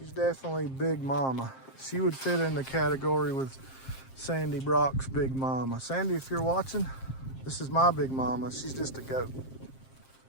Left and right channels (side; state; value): right; late; 7.5 ms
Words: definitely big mama. She would fit in the category with Sandy Brock's big mama. Sandy, if you're watching, this is my big mama. She's just a goat.